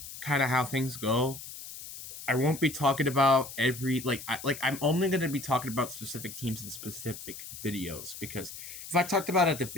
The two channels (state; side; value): noise; left; hiss, 12 dB below the sound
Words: kind of how things go. I won't be talking about every I'm only going to be talking about specific teams in specific videos, because if I talked about a